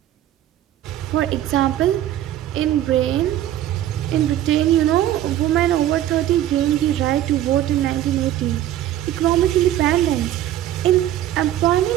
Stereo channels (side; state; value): left; quieter; 12.6 dB